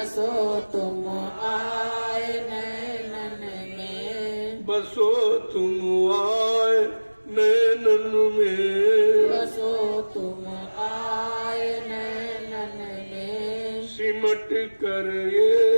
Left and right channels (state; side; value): inverted; both; correlation -1.00